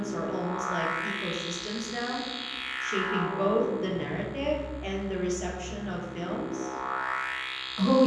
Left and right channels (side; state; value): both; identical; correlation 1.00